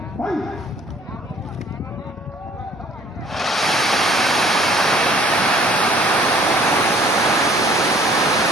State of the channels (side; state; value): both; normal; correlation 0.56